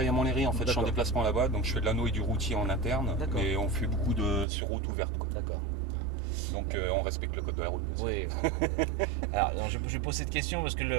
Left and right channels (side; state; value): left; drops out; at 4.5 s